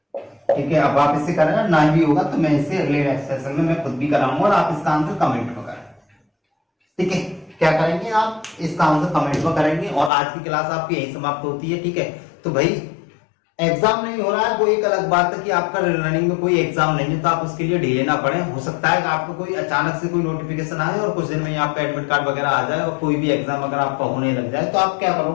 ठीक है, अब आप इसे करें ना भी होगा तो मैं इसे अगले सेशन में मैं खुद भी कराऊंगा और आप इसका आंसर कमेंट में करें। ठीक है, क्या करेंगे आप इसका आंसर कमेंट में करेंगे। और आज की क्लास आपकी यही समाप्त होती है, ठीक है। तो भाई एग्जाम नहीं हो रहा है वो एक अलग बात है कि आपका रनिंग में कोई एग्जाम नहीं है तो आप उसके लिए ढीले ना पड़े। हो सकता है कि आपको कोई अचानक से कोई नोटिफिकेशन आए और कुछ दिन में आपका एडमिट कार्ड वगैरह आ जाए और कोई भी एग्जाम अगर आपका होने लग जाए तो आप क्या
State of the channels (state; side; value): drops out; right; at 10.1 s